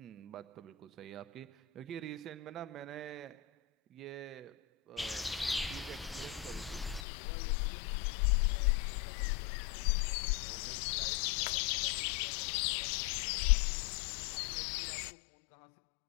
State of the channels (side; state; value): right; drops out; at 7.1 s